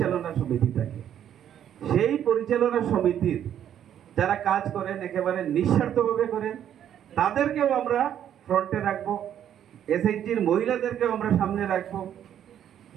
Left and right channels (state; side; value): quieter; left; 10.1 dB